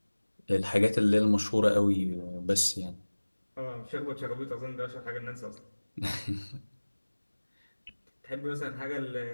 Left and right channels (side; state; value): both; inverted; correlation -1.00